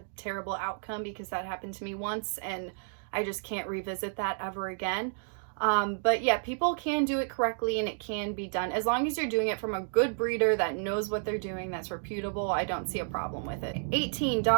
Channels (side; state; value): left; silent; digital silence